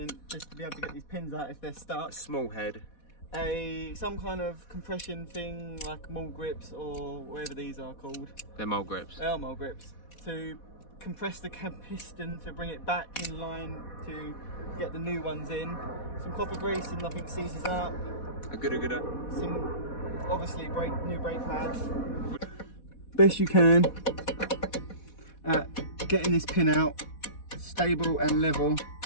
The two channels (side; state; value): right; late; 4.1 ms